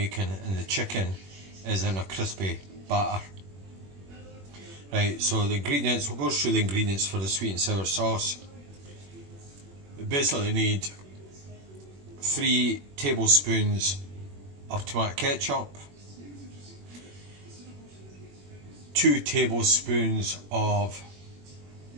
and the chicken is in a crispy batter. Right, so the ingredients, we'll go through the ingredients for the sweet and sour sauce. We basically need 3 tablespoons of tomato ketchup, 2 tablespoons of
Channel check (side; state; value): left; late; 21 ms